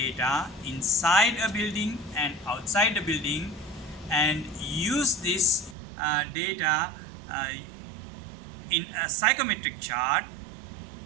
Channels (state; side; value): drops out; left; at 5.8 s